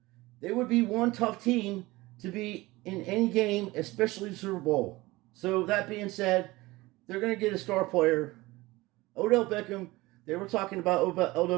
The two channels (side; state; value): left; quieter; 20.4 dB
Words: they would be one tough team to be in any game, especially the Super Bowl. So that being said, they're going to get a star player. Odell Beckham, they were talking about